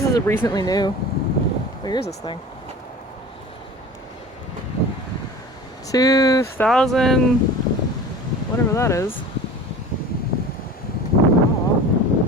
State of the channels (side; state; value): both; normal; correlation 0.38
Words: is recently new. Where is this thing? 2000, whatever that is. Oh,